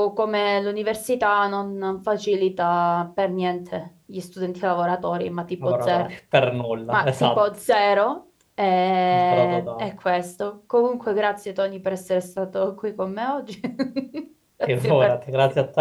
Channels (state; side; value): identical; both; correlation 1.00